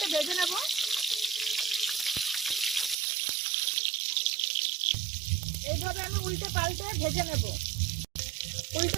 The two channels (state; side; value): drops out; left; at 3.0 s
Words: ভেজে নেব। এইভাবে আমি উল্টে পাল্টে ভেজে নেব।